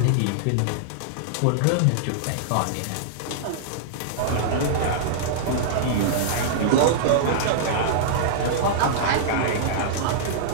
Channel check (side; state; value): both; different; correlation -0.02